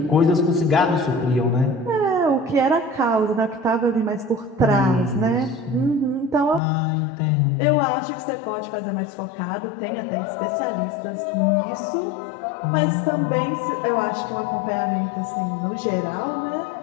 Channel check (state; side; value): drops out; right; at 6.6 s